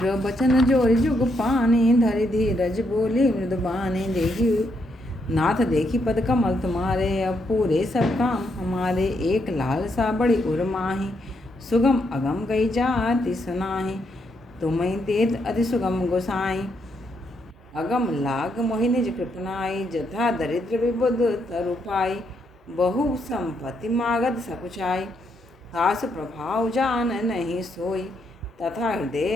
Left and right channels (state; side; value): normal; both; correlation 0.77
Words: बचन जोरि जुग पानी, धरि धीरज बोली मृदु बानी। देखी नाथ देखी पद कमल तुम्हारे, अब पूरे सब काम हमारे। एक लालसा बड़ी उर माही, सुगम अगम गई जाति सुनाही। तुम्हें देत अति सुगम गोसाई, अगम लाग मोहि निज कृपनाई। जथा दरिद्र विबुध तरु पाई, बहु संपत्ति मागध सकुचाई। तासु प्रभाव जान नहीं सोई, तथा